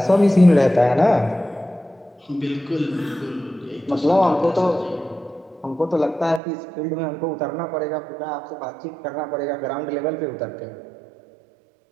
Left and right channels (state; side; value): drops out; left; at 6.4 s